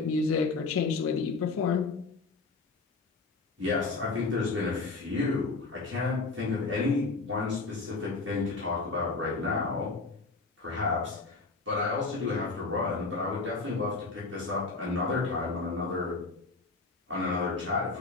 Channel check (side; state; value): right; quieter; 3.9 dB